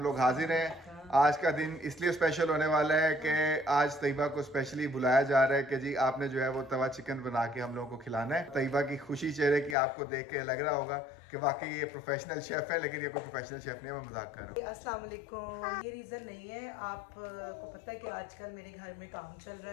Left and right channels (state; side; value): drops out; right; at 9.8 s